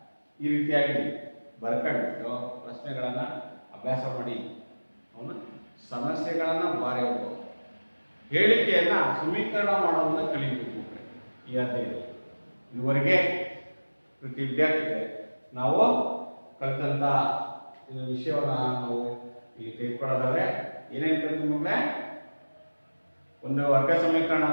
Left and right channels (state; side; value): inverted; both; correlation -1.00